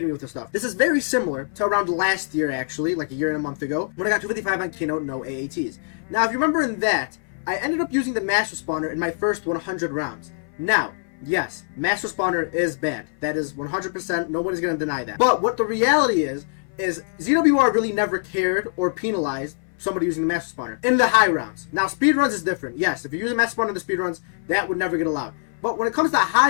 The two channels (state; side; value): silent; right; 60 dB below the other